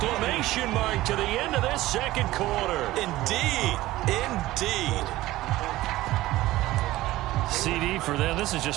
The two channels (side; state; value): left; quieter; 16.8 dB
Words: mark to the end of this second quarter. Indeed. Indeed. CD for them. This has